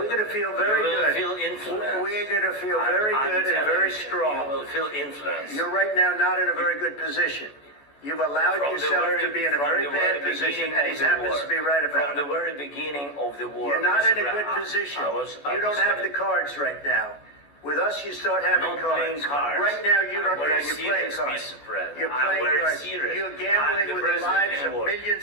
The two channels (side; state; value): right; late; 14 ms